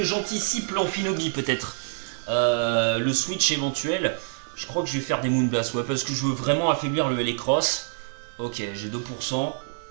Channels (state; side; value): silent; left; digital silence